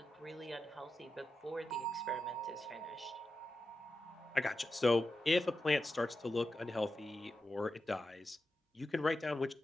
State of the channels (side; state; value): both; normal; correlation 0.90